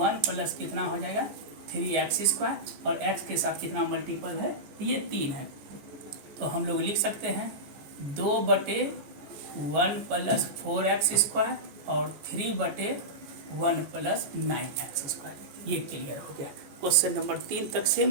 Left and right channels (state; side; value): late; left; 14 ms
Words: प्लस कितना हो जाएगा 3x स्क्वायर, और x के साथ कितना मल्टीपल है ये 3 है। तो हम लोग लिख सकते हैं 2/1 प्लस 4x स्क्वायर और 3/1 प्लस 9x स्क्वायर। ये क्लियर हो गया। क्वेश्चन नंबर 3 तक सेम